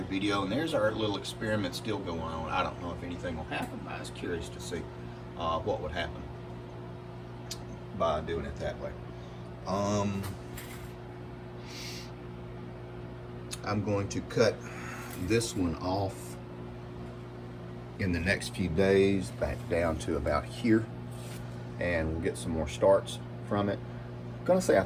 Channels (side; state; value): both; identical; correlation 1.00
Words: video, and there's our little experiment still going on. I don't know if anything will happen, but I was curious to see what would happen by doing it that way. I'm going to cut this one off in the next few days, back down to about here, and we'll get some more starts from it. I'm gonna say I